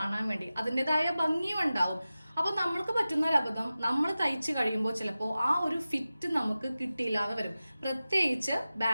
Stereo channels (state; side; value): inverted; both; correlation -0.95